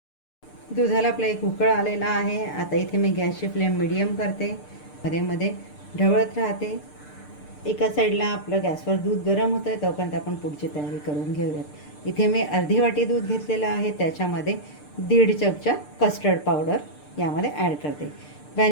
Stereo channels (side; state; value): right; late; 6.7 ms